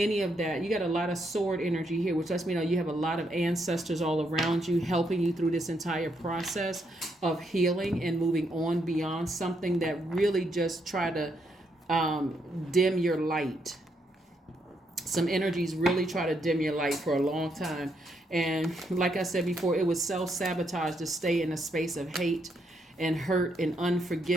of that. You got a lot of sword energy here, which lets me know you have a lot of ancestors all around you helping you through this entire process of healing and moving on beyond something that really just try to dim your light. Some energies really try to dim your light for a long time. And like I said before, it was self-sabotage to stay in a space of hate and hurt and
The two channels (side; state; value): both; normal; correlation 0.77